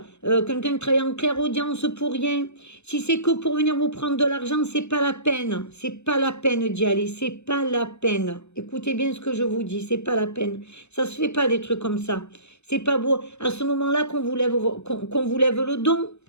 quelqu'un qui travaille en clairaudience pour rien. Si c'est que pour venir vous prendre de l'argent, c'est pas la peine. C'est pas la peine d'y aller. C'est pas la peine. Écoutez bien ce que je vous dis. C'est pas la peine. Ça se fait pas des trucs comme ça. C'est pas beau. À ce moment-là qu'on vous lève, qu'on vous lève le don,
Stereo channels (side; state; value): right; late; 0.81 ms